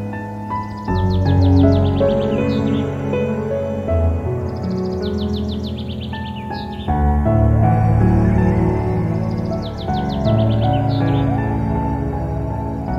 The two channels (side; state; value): both; identical; correlation 1.00